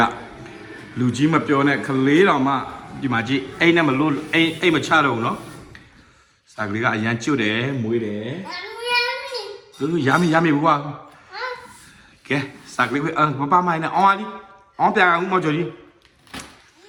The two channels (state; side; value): identical; both; correlation 1.00